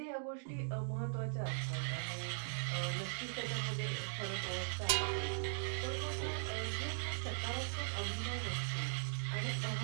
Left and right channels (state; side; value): silent; left; digital silence